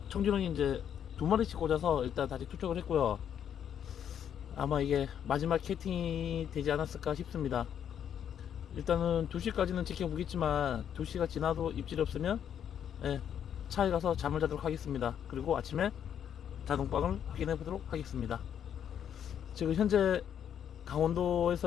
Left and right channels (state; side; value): quieter; right; 9.0 dB